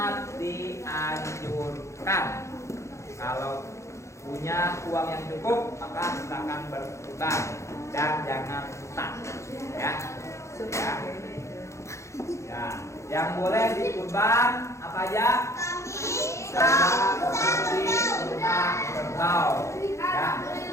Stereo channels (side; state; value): right; late; 0.14 ms